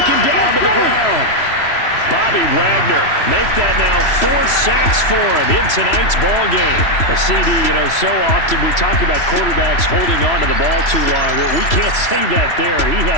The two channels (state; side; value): late; right; 3.0 ms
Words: down to the ground. Bobby Wagner make that now 4 sacks for him in tonight's ball game. A CD, you know, so often we talk about quarterbacks holding on to the ball too long. Well, we can't say that there. He